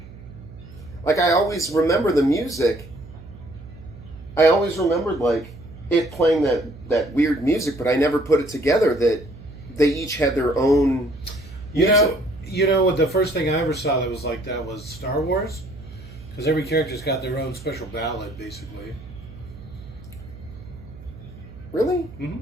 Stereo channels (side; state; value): right; noise; hum, 17 dB below the sound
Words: I always remember the music. I always remembered it playing that weird music, but I never put it together that they each had their own music. You know, the first thing I ever saw that was like that was Star Wars, because every character's got their own special ballad, basically. Really?